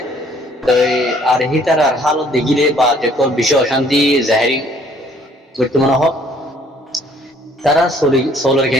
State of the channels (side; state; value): both; normal; correlation 0.60